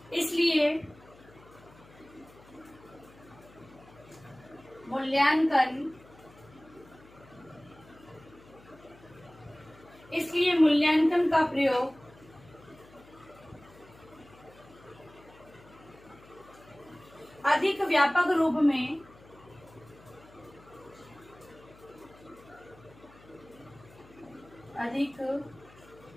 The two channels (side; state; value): left; noise; hum, 24 dB below the sound